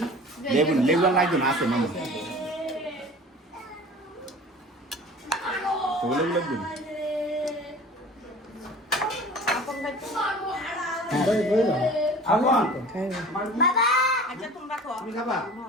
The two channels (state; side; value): normal; both; correlation 0.42